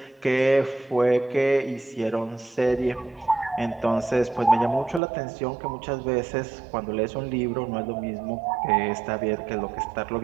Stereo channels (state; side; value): drops out; left; at 5.0 s